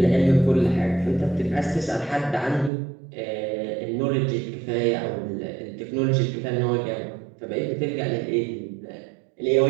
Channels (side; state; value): left; drops out; at 2.7 s